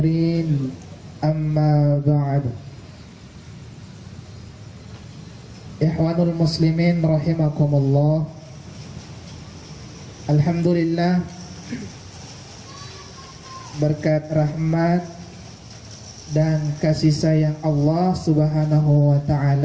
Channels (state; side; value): identical; both; correlation 1.00